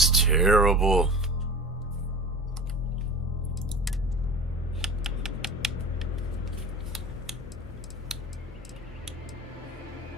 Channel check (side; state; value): both; normal; correlation 0.35